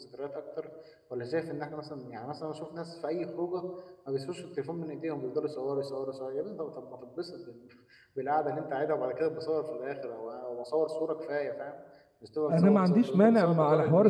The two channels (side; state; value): both; identical; correlation 1.00